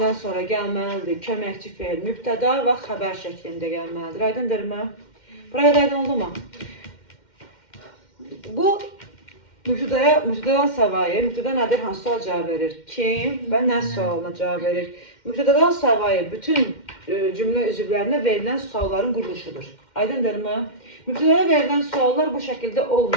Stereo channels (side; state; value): right; late; 2.1 ms